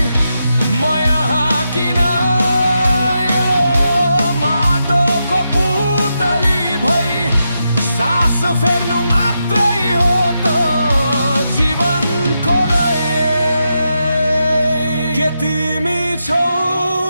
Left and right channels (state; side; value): inverted; both; correlation -0.86